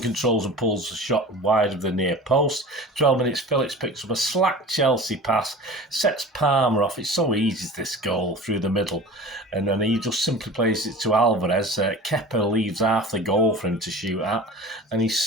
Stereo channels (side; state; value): both; normal; correlation 0.38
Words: controls and pulls the shot wide of the near post. 12 minutes, Phillips picks up a slack Chelsea pass, sets Palmer off. It's so easy, this goal through the middle. And then he just simply plays it to Alvarez. Kepa leaves half the goal for him to shoot at. And